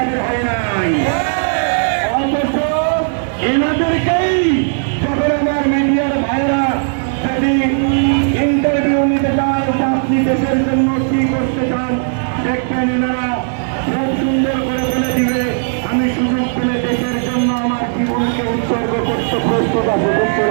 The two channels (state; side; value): silent; left; digital silence